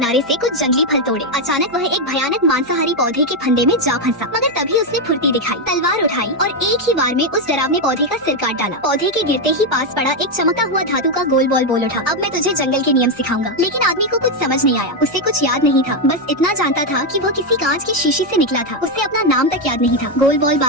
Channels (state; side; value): noise; right; hum, 29 dB below the sound